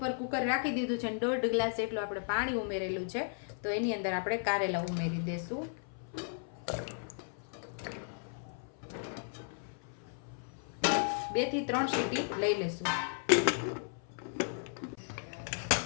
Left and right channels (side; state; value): right; silent; 54 dB below the other